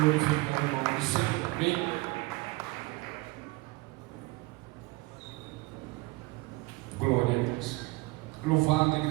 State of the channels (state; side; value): quieter; left; 23.2 dB